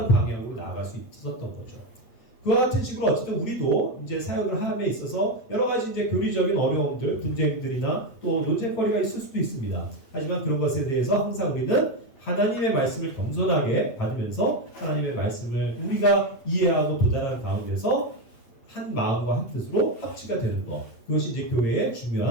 방향으로 나아갈 수 있었던 거죠. 그와 같은 식으로 어쨌든 우리도 이제 사역을 함에 있어서 여러 가지 이제 교리적인 어려움들, 분쟁들이나 또 논쟁거리가 있을 수도 있습니다. 하지만 그런 것에 대해서 항상 우리는 하나님의 말씀을 겸손하게 받으면서 하나님의 말씀을 우리가 이해하고 도달하는 가운데서 한 마음과 한 뜻으로 합치가 되는 것, 그것이 이제 교회의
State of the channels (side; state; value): right; late; 8.5 ms